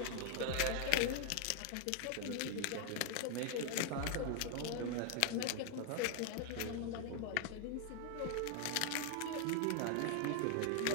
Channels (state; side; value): different; both; correlation 0.00